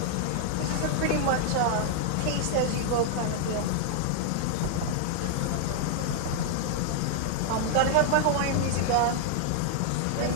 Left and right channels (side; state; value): both; different; correlation -0.01